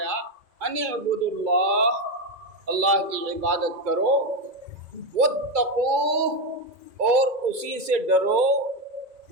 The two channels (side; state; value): left; late; 2.3 ms